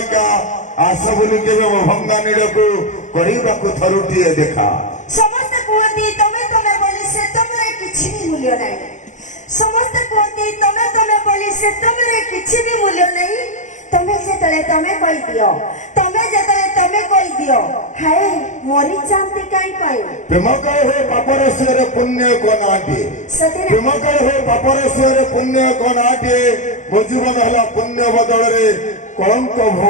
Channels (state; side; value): late; right; 0.35 ms